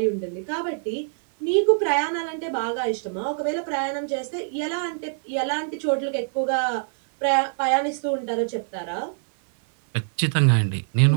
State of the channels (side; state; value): left; silent; 62 dB below the other